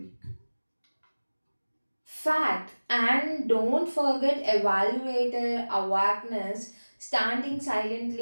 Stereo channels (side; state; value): both; inverted; correlation -1.00